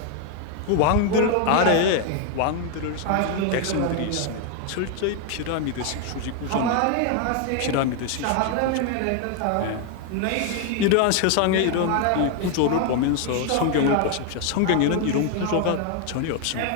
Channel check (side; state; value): both; different; correlation 0.01